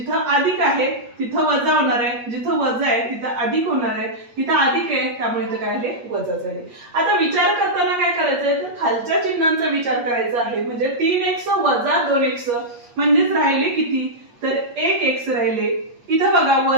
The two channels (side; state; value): left; late; 8.4 ms